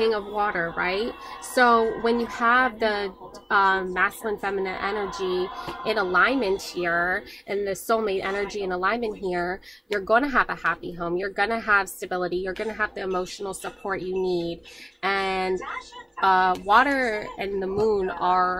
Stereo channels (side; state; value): both; identical; correlation 1.00